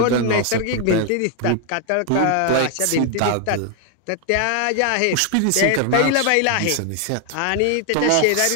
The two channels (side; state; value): both; different; correlation 0.00